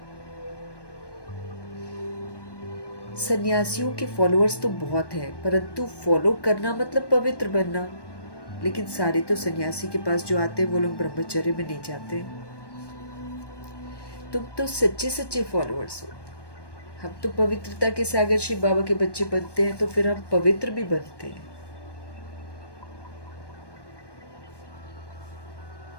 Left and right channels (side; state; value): right; late; 1.2 ms